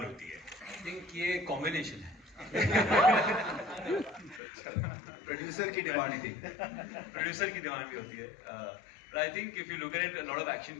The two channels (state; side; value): drops out; right; at 4.4 s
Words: होती है? I think ये कॉम्बिनेशन है. प्रोड्यूसर की डिमांड थी. प्रोड्यूसर की डिमांड भी होती है. But I think if you look at it, a lot of